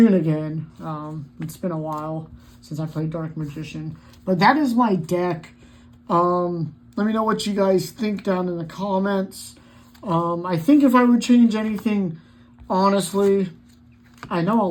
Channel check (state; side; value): identical; both; correlation 1.00